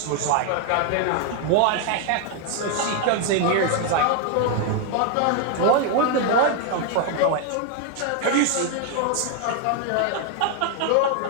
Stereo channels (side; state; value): both; different; correlation 0.00